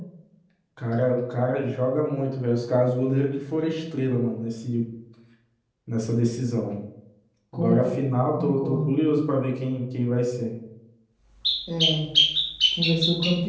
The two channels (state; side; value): identical; both; correlation 1.00